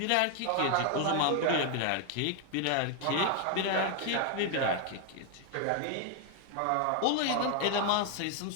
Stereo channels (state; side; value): different; both; correlation 0.00